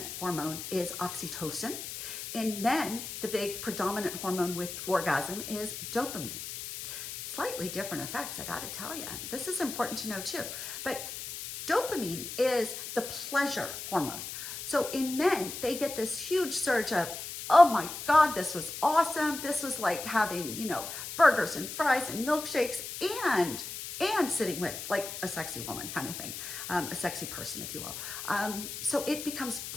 hormone is oxytocin. In men, the big predominant hormone with orgasm is dopamine. Slightly different effects, I gotta tell you. This is important to know too. But dopamine is the pleasure hormone. So in men, they get this huge surge of, oh my God, this was awesome. This was like having, burgers and fries and milkshakes and sitting with like a sexy woman kind of thing, a sexy person, if you will. So it becomes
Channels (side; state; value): left; noise; hiss, 8 dB below the sound